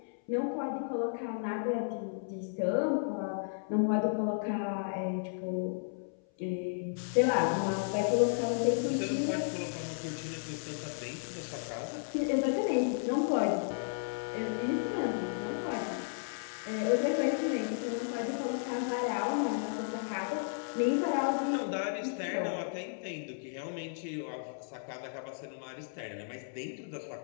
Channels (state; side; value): silent; right; 55 dB below the other